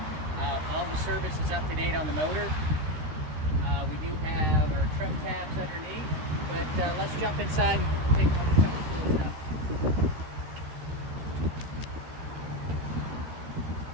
All the service is up to date on the motor. We do have our trim tabs underneath, but let's jump inside and take a look at some of the cool stuff.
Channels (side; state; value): left; late; 13 ms